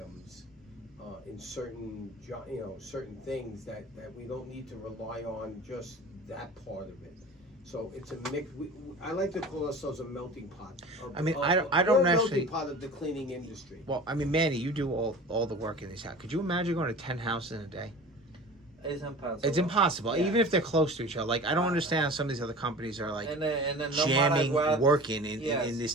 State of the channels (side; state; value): both; normal; correlation 0.39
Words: in certain certain things that we don't need to rely on just that part of it. So it's a mix. I like to call ourselves a melting pot. I mean, I don't we're a actually- melting pot of the cleaning industry. Well, I mean, Manny, you do all the work in this house. Could you imagine going to 10 houses in a day? It's impossible. It's impossible, Yeah. even if they're close to each other. Like, I don't understand how some of these other companies are like And then no jamming, matter what, working in Yes. this